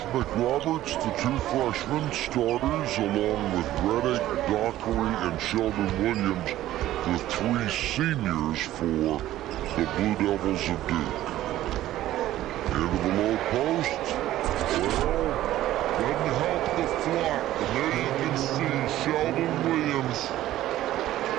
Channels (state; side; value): quieter; left; 14.2 dB